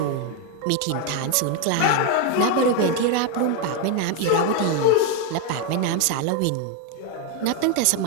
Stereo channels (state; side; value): different; both; correlation 0.01